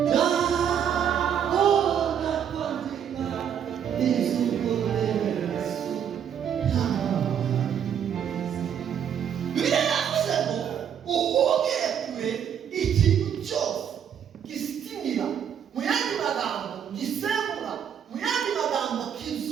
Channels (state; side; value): quieter; left; 8.6 dB